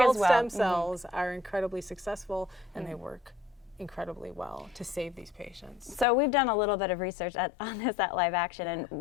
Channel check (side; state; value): right; drops out; at 6.1 s